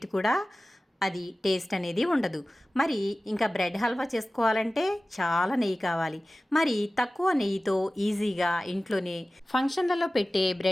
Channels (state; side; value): normal; both; correlation 0.97